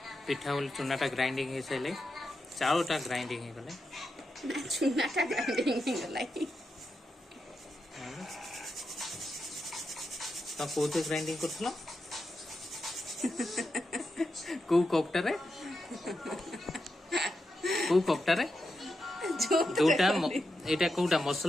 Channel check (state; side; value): normal; both; correlation 0.86